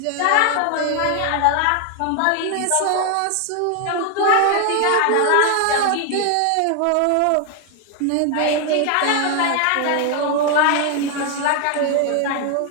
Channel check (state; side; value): different; both; correlation 0.01